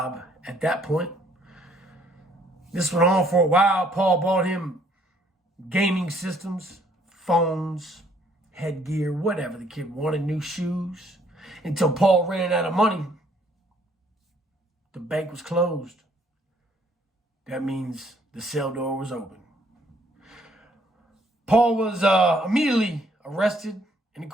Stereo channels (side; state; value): both; normal; correlation 0.65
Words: at that point. This went on for a while. Paul bought him gaming systems, phones, headgear, whatever the kid wanted, new shoes, until Paul ran out of money. The bank was closed. That means the cell door was open. Paul was immediately arrested and